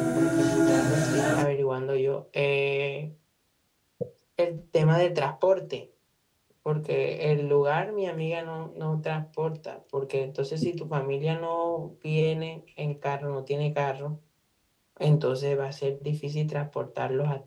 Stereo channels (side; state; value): both; identical; correlation 1.00